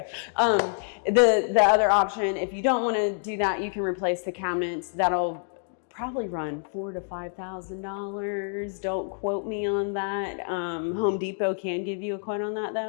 The other option, if you don't want to do that, you can replace the cabinets. That'll probably run $4,000 to $5,000. Don't quote me on that. Home Depot can give you a quote on that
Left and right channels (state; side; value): silent; right; 60 dB below the other